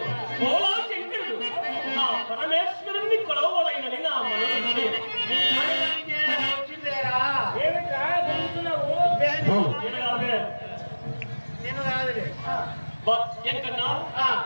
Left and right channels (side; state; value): both; inverted; correlation -1.00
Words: భోలా శంకరుడు, నా పరమేశ్వరుణ్ణి కొలవలైనని నా మనసు వచ్చిందేరా. నేను కాదులే. ఎంకన్నా ఆ,